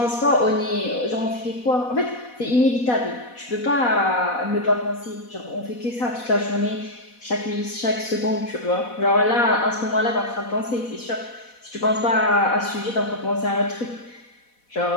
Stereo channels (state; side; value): late; right; 4.1 ms